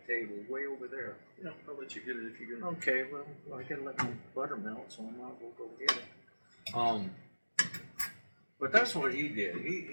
table, way over there. Yeah, I'll let you get it if you get it. Okay, well, I gotta let my butter melt, so I might as well go get it. But that's what he did.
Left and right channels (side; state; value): both; inverted; correlation -1.00